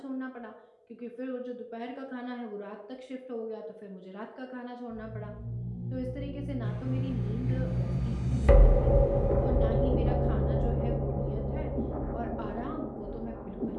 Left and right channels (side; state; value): both; identical; correlation 1.00